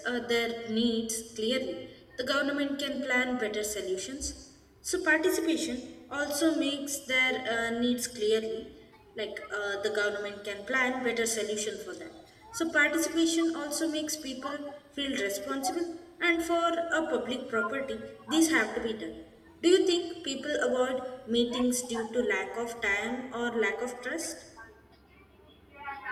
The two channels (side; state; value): both; identical; correlation 1.00